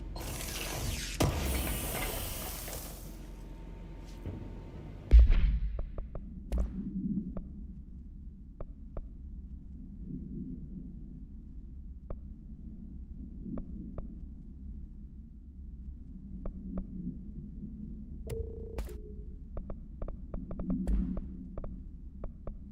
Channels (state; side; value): identical; both; correlation 1.00